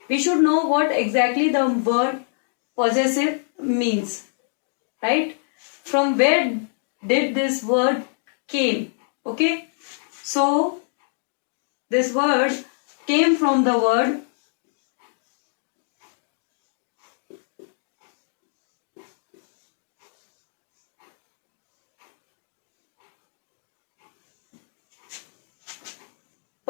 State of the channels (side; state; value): right; silent; 59 dB below the other